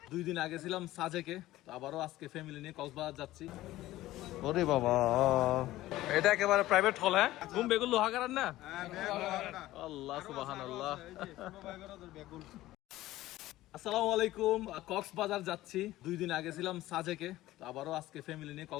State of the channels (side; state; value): right; quieter; 16.1 dB